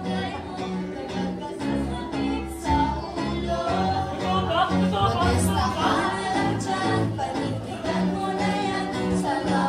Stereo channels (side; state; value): both; identical; correlation 1.00